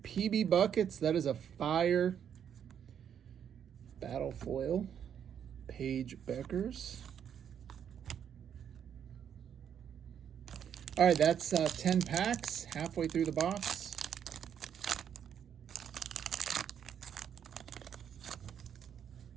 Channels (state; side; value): quieter; left; 8.6 dB